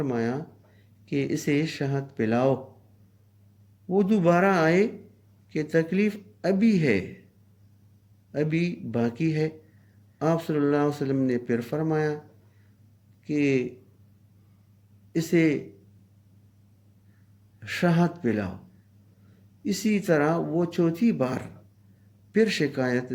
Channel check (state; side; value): identical; both; correlation 1.00